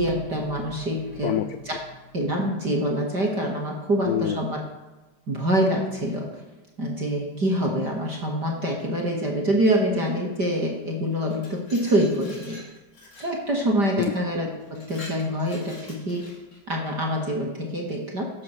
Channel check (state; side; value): late; left; 5.1 ms